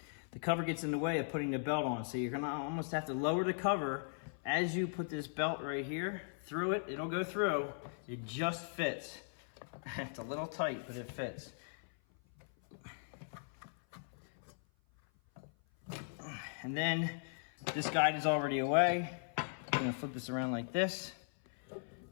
the cover gets in the way of putting the belt on. So you're going to almost have to lower the cover as you put this belt right here through it. It'll go through. It just fits. It's a little tight, but it fits. And then this guide is already away. I'm going to flip this around like this.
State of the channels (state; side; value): silent; right; 52 dB below the other